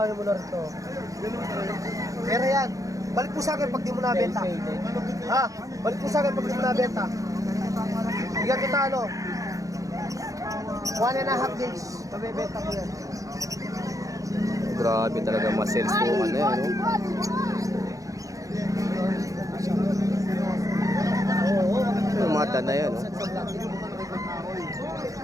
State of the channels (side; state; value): left; late; 0.16 ms